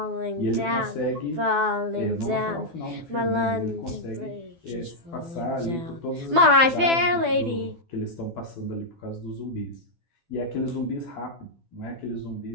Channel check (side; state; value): left; late; 12 ms